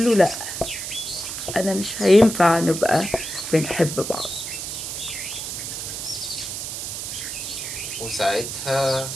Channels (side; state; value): right; noise; hiss, 6 dB below the sound